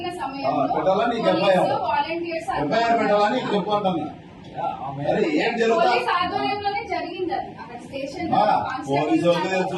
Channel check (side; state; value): both; identical; correlation 1.00